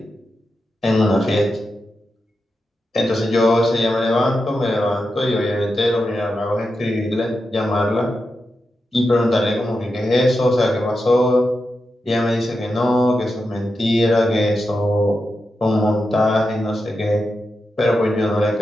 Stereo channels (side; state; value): both; normal; correlation 0.88